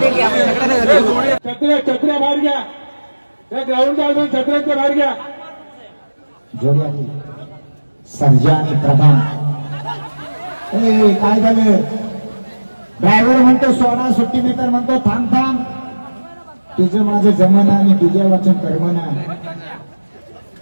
छत्र्या बाहेर घ्या. त्या ग्राउंडच्या अजून छत्र्यांच्या बाहेर घ्या. जोडी आली. सर्जा आणि प्रधान. काय झालं. ड्रायव्हर म्हणतो सोडा, सुट्टी मीटर म्हणतो थांब थांब. तुझं माझं जमना आणि तुझ्या वाचन कर्मना.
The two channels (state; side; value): inverted; both; correlation -1.00